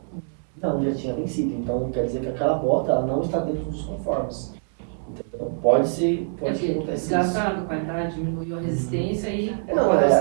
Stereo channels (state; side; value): silent; left; 62 dB below the other